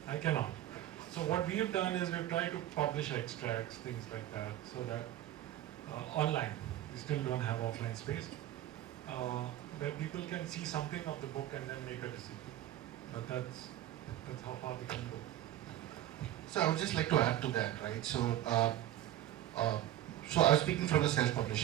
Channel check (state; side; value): quieter; left; 13.2 dB